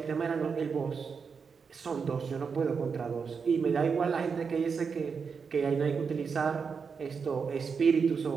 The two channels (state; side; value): quieter; left; 5.7 dB